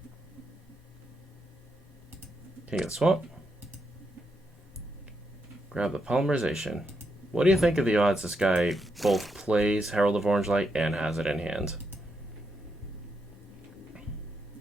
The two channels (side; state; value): both; normal; correlation 0.81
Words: King of the Swamp. Grab the polymerization. What do you think of the odds this guy both plays Herald of Orange Light and has it in hand?